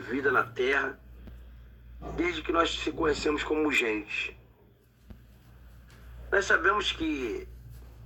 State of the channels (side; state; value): both; identical; correlation 1.00